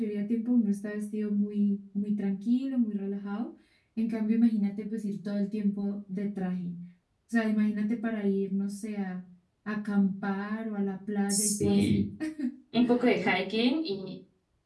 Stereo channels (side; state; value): both; identical; correlation 1.00